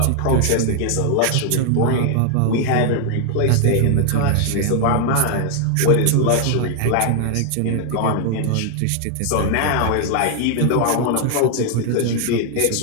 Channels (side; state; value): both; different; correlation 0.00